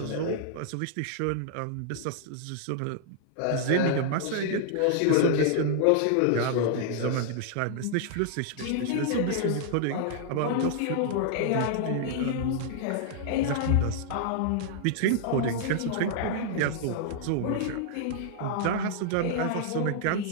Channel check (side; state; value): both; different; correlation -0.01